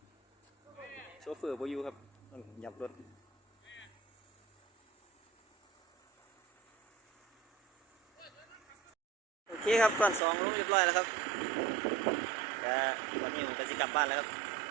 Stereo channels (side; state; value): left; drops out; at 10.2 s